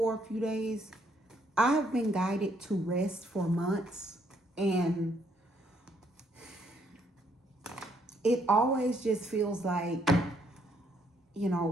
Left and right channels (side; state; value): both; normal; correlation 0.70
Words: a few days. I've been guided to rest for months, and it always just feels like,